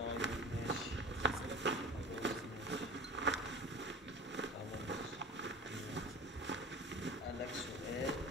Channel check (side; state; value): both; normal; correlation 0.35